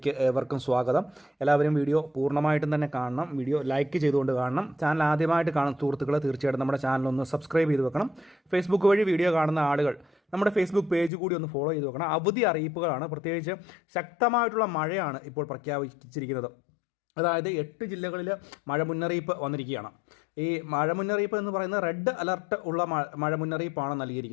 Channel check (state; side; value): drops out; right; at 11.1 s